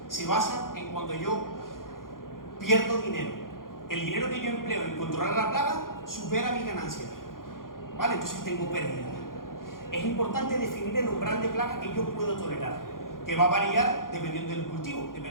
se basa en cuando yo pierdo dinero. El dinero que yo empleo en controlar la plaga supera mi ganancia, ¿vale? Entonces tengo pérdida. Es importante definir el umbral de plaga que yo puedo tolerar, que va a variar dependiendo del cultivo,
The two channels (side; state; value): right; late; 0.91 ms